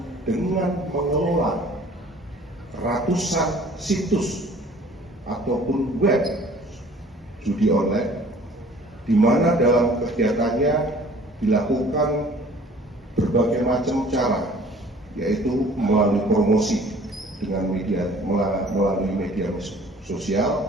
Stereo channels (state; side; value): normal; both; correlation 0.51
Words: dengan mengelola ratusan situs ataupun web judi online, di mana dalam kegiatannya dilakukan berbagai macam cara, yaitu melalui promosi dengan melalui media